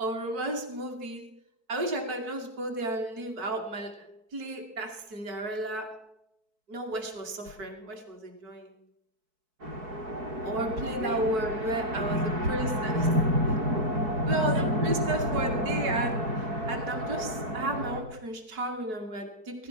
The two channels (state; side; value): late; left; 4.6 ms